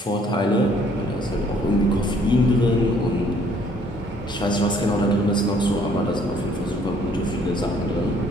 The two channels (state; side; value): normal; both; correlation 0.62